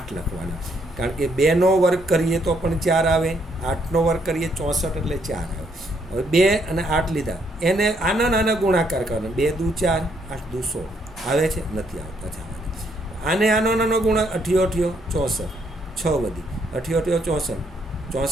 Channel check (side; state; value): both; normal; correlation 0.72